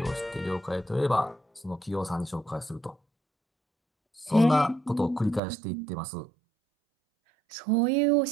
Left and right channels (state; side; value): drops out; left; at 5.4 s